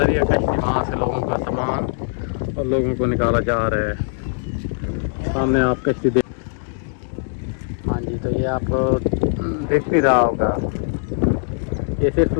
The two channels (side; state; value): right; silent; digital silence